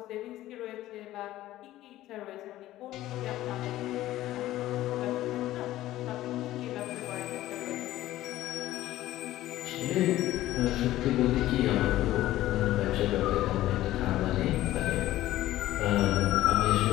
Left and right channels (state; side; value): quieter; right; 15.0 dB